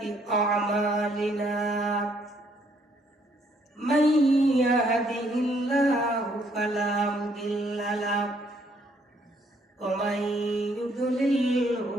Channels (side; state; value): both; normal; correlation 0.68